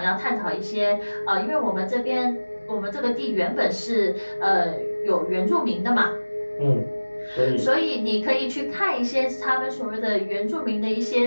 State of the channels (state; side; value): inverted; both; correlation -1.00